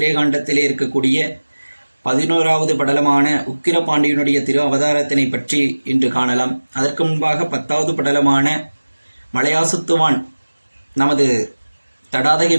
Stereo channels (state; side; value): inverted; both; correlation -1.00